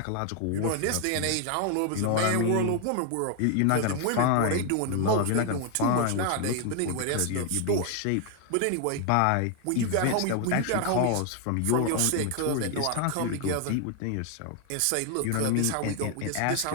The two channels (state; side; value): different; both; correlation 0.00